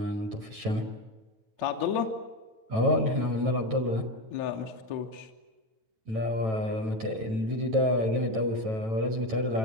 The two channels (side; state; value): left; late; 9.1 ms